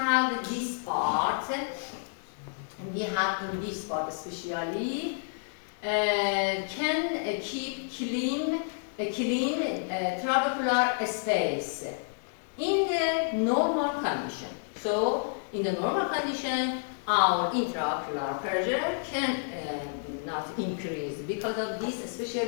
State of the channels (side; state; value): right; silent; digital silence